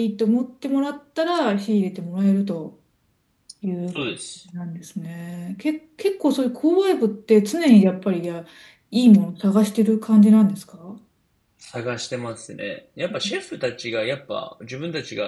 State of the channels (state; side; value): identical; both; correlation 1.00